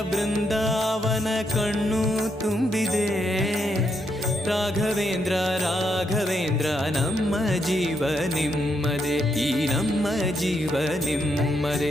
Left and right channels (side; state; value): both; normal; correlation 0.78